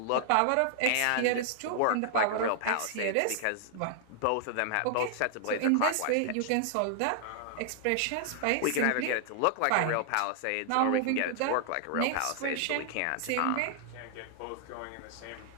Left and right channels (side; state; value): both; different; correlation -0.01